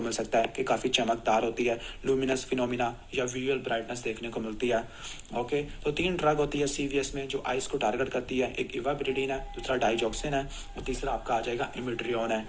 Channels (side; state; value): both; identical; correlation 1.00